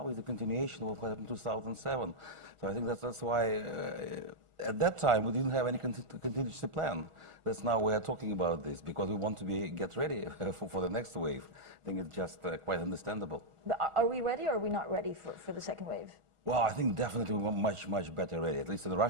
is a continuation of what happened in 2007. So I think that's why at that time we didn't have any contingency plan. That's now we are talking about this because we want to get ready for the next wave. I think it's just quite understandable. But are we ready or are we not ready for the second wave? Well, I think definitely we're much better ready. At least in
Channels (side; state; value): left; late; 1.4 ms